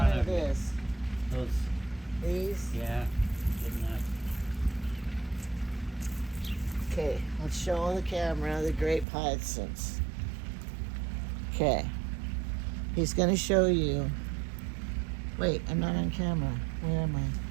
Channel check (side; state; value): left; drops out; at 9.1 s